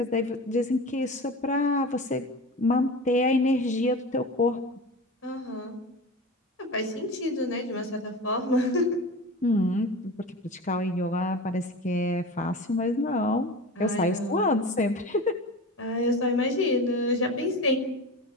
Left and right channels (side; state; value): both; normal; correlation 0.31